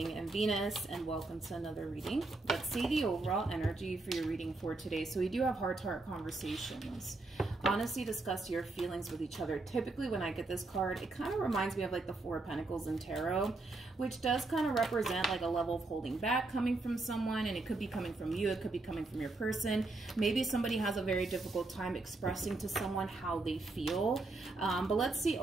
and Venus, and welcome to another reading. Let's see the overall energy for your reading for today. So we do have heart-to-heart conversations. Honestly, discuss your feelings with each other. Typically when I get this card, it kind of reminds me of like the Four of Pentacles in Tarot, which does kind of represent like a level of holding back coming from someone, and it could be coming from you, it could be coming from your person. Maybe somebody has a very difficult time expressing to someone how they feel. But let's see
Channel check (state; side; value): quieter; left; 3.3 dB